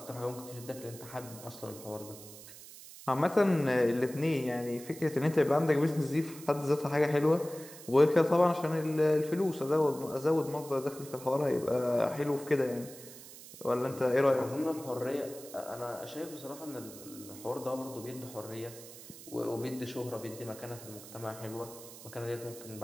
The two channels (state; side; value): noise; right; hiss, 16 dB below the sound